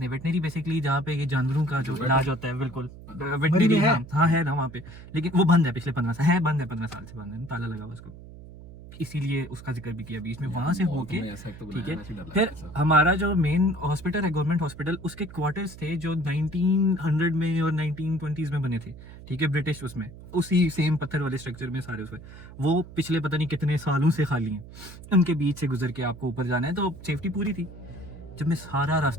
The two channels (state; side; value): noise; right; hum, 16 dB below the sound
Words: हैं। वेटनरी बेसिकली जहाँ पे ये जानवरों का जो इलाज होता है, बिल्कुल वेटनरी है। हाँ है ना वहाँ पे, लेकिन वो बंद है पिछले 15 साल, है बंद है 15 साल से बंद है, ताला लगा हुआ उसको, इसीलिए उसका जिक्र भी किया बीच में। वहां से होके ठीक है, फिर हमारा जो मेन हॉस्पिटल है गवर्नमेंट हॉस्पिटल, उसके क्वार्टर्स थे जो 1900 में और 1920s में बने थे, ठीक है, ब्रिटिश, उसमें उसी सेम पत्थर वाले स्ट्रक्चर में सारे उसमें, वो पिछले पता नहीं कितने सालों से खाली हैं। उनके बीच से गुजर के आपको ऊपर जाना है, तो सेफ्टी पूरी थी। जब मैं सारा